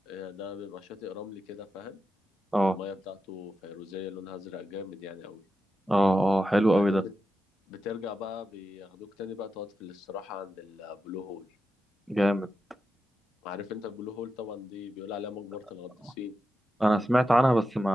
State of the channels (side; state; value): both; normal; correlation 0.89